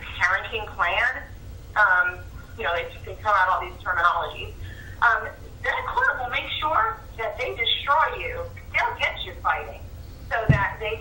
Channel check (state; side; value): identical; both; correlation 1.00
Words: parenting plan, they throw out all these terminologies, that court will make sure that they destroy you. They'll get you fighting so that they